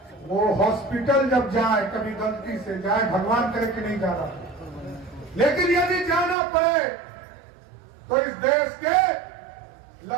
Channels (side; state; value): left; drops out; at 6.4 s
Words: वो हॉस्पिटल जब जाए, कभी गलती से जाए, भगवान करे कि नहीं जाना, लेकिन यदि जाना पड़े तो इस देश के